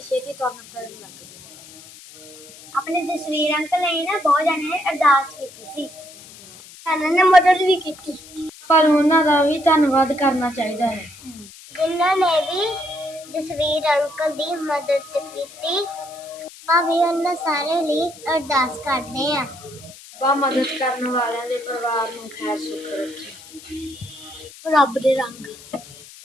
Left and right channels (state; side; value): noise; left; hiss, 19 dB below the sound